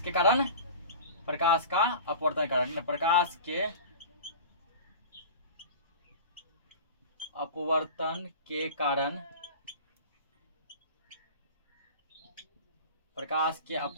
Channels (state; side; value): inverted; both; correlation -0.36